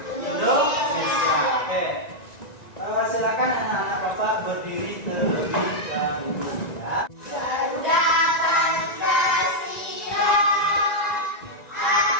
Indonesia. Oke, silakan anak-anak Bapak berdiri terlebih dahulu ya.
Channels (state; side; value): late; right; 1.9 ms